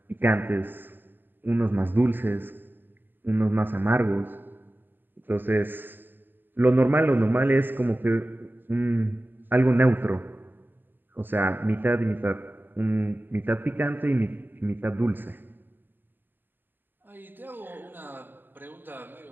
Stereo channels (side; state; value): left; late; 0.092 ms